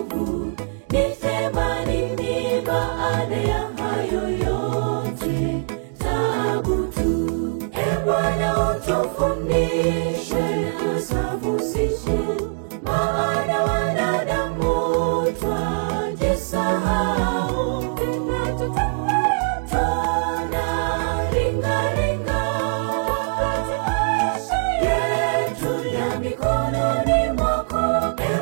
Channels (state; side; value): silent; left; digital silence